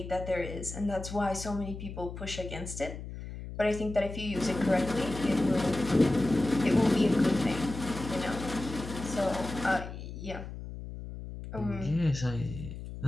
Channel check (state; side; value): noise; left; hum, 10 dB below the sound